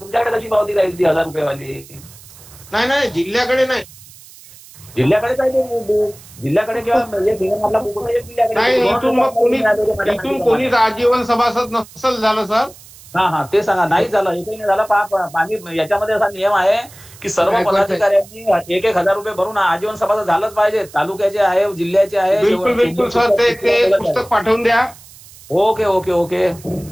तुमच्याकडे कशी पावती राहील ती 1000 रुपयेवाली? नाही जिल्ह्याकडे नाही. जिल्ह्याकडे काय ते जिल्ह्याकडे किंवा आपला बुक नाही. इथून कोणीच आजीवन सभासद नसेल झालं सर. हा, ते सांगा. नाही झालं, एकही नाही झालं. आम्ही याच्यामध्ये असा नियम आहे की सर्व पदाधिकाऱ्यांनी 1,000 रुपये भरून आजीवन सभासद झालंच पाहिजे. तालुक्याचे आहे, जिल्ह्याचे आहे. बिलकुल सर. ते पुस्तक पाठवून द्या. ओके.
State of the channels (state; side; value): noise; right; hiss, 21 dB below the sound